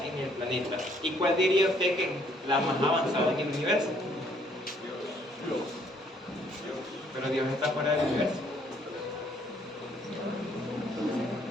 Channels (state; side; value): normal; both; correlation 0.65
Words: en el planeta. ¿Y cuál diría usted que es la más avanzada en el universo? Dios. Pero Dios está fuera del universo.